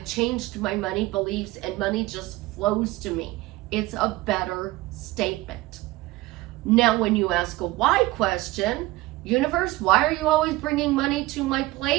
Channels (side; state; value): left; quieter; 19.3 dB